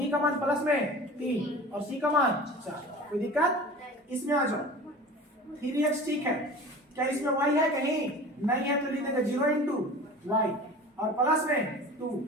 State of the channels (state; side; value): normal; both; correlation 0.38